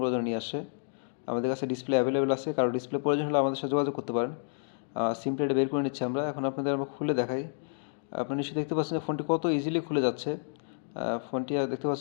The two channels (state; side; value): silent; right; digital silence